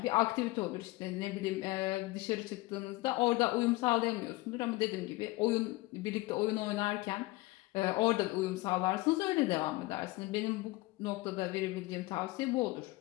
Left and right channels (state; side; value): quieter; right; 20.7 dB